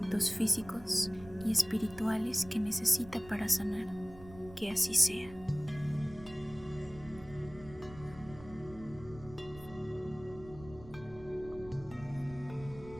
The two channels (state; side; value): noise; right; rumble, 18 dB below the sound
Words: físicos y espirituales que necesita para sanar. Que así sea.